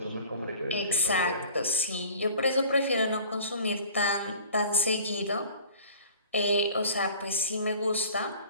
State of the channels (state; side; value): inverted; both; correlation -0.46